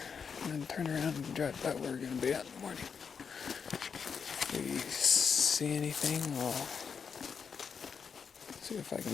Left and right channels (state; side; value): quieter; right; 6.3 dB